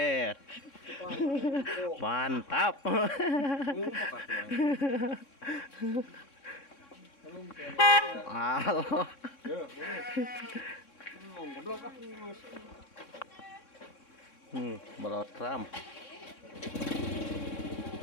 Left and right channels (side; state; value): right; late; 3.6 ms